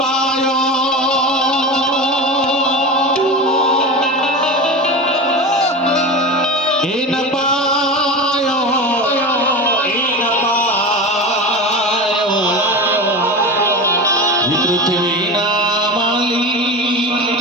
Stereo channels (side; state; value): both; normal; correlation 0.27